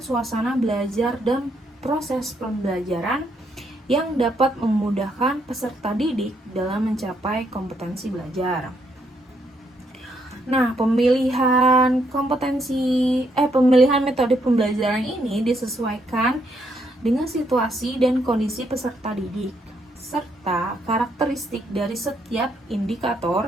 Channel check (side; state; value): both; normal; correlation 0.74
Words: belajar dan proses pembelajaran yang dapat memudahkan peserta didik dalam mencapai kompetensi belajar. Nah, pemilihan metode pembelajaran ini disesuaikan dengan situasi dan kondisi peserta didik serta karakteristik dari setiap